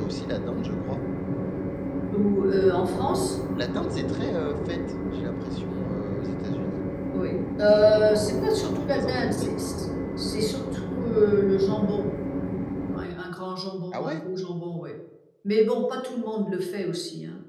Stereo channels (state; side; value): identical; both; correlation 1.00